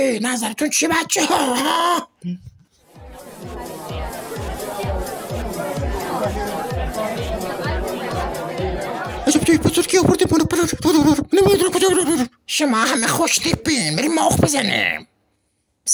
نظرتون چی بچه ها؟ شما همه خوش تیپین بریم ماخ بزنیم.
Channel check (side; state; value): both; identical; correlation 1.00